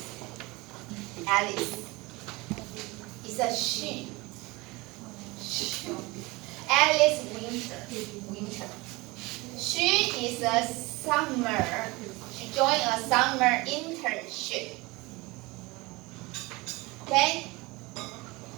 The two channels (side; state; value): left; quieter; 23.3 dB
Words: Alice. It's a she. Alice Winter. She is a summer. She joined a summer internship. Okay?